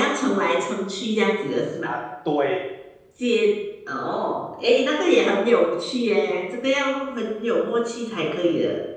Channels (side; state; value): both; identical; correlation 1.00